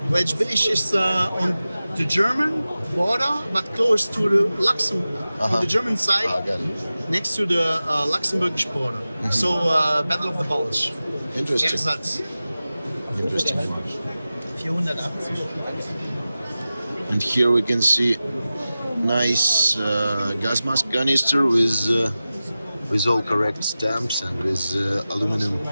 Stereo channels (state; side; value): inverted; both; correlation -0.95